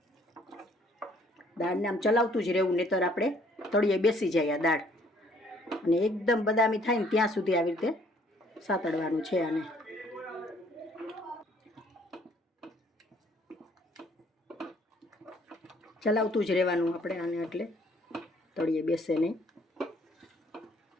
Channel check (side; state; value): both; normal; correlation 0.62